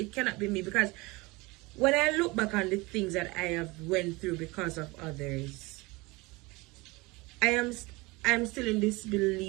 cannot be me, because when I look back on the things that I have went through because of others, I'm still in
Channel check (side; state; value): left; quieter; 23.8 dB